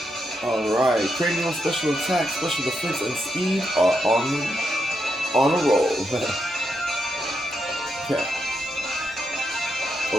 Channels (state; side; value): noise; left; hum, 29 dB below the sound